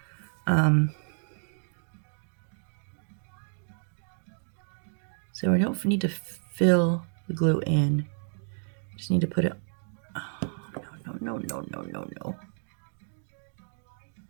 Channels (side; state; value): left; silent; 57 dB below the other